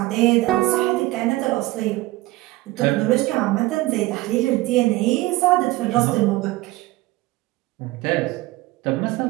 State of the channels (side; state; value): left; quieter; 19.0 dB